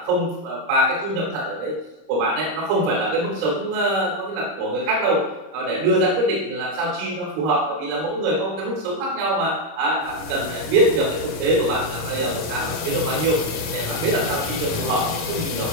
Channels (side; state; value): left; late; 25 ms